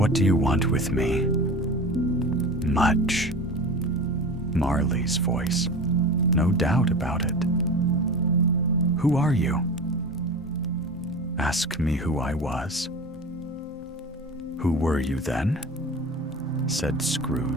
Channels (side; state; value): both; normal; correlation 0.33